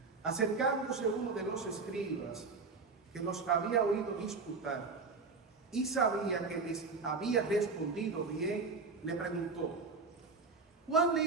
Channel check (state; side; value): quieter; left; 4.3 dB